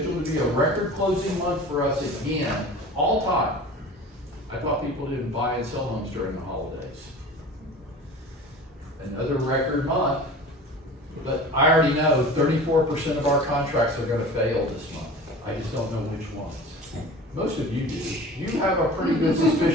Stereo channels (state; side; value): normal; both; correlation 0.39